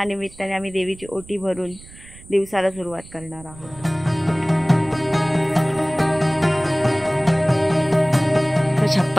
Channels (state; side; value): noise; right; rumble, 20 dB below the sound